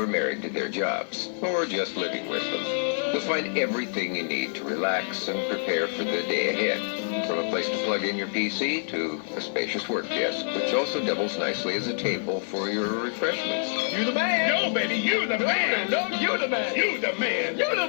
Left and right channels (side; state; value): right; silent; digital silence